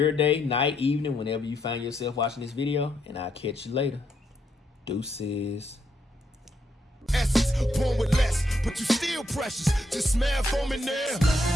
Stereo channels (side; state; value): both; normal; correlation 0.77